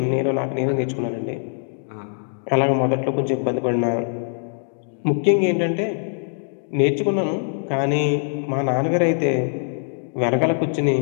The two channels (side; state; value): right; silent; digital silence